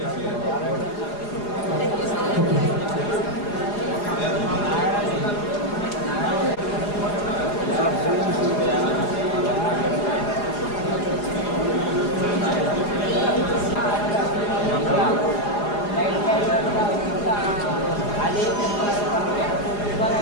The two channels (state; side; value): late; right; 4.8 ms